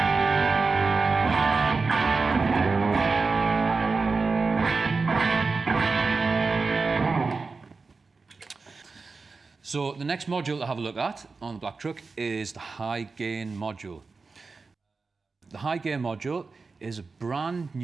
So the next module to have a look at on the Black Truck is the high gain module. The high gain module is a brand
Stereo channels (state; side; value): quieter; left; 4.3 dB